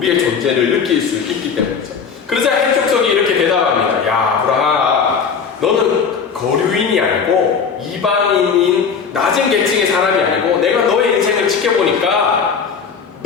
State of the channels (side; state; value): right; quieter; 6.1 dB